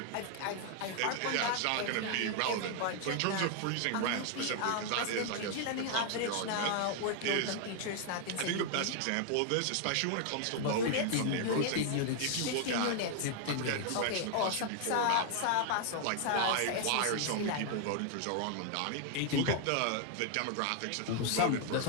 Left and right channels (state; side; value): different; both; correlation 0.00